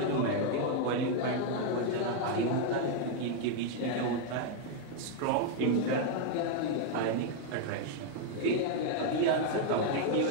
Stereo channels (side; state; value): both; different; correlation 0.00